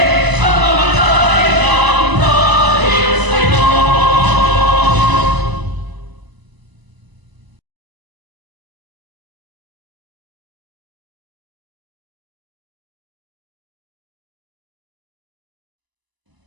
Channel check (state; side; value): late; left; 1.0 ms